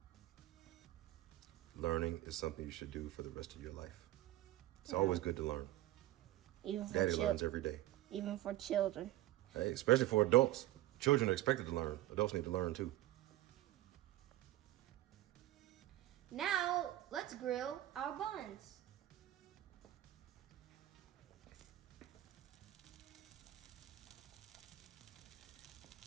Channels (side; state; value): left; quieter; 15.4 dB